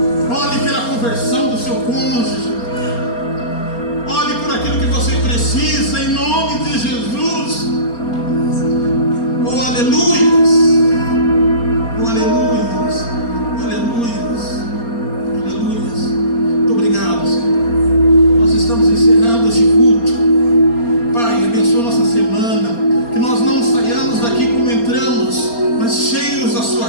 Ore pela conversão do seu cônjuge. Ore por aquilo que você precisa, em nome de Jesus. Aleluias. Aleluias. Aleluias. Aleluias. Muito obrigado, Senhor. Nós estamos encerrando este culto. Pai, abençoa nossa semana. Que nós não saiamos daqui como entramos, mas cheios da sua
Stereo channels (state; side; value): late; right; 4.3 ms